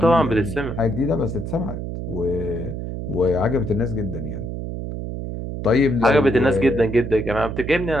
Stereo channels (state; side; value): noise; right; hum, 6 dB below the sound